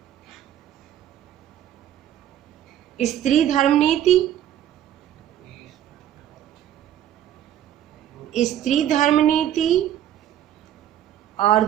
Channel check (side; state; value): left; quieter; 11.1 dB